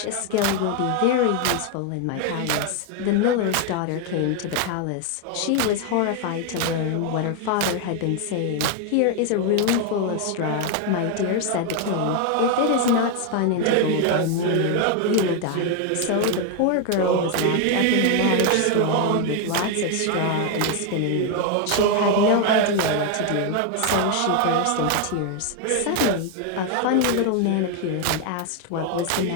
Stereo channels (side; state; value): both; different; correlation 0.01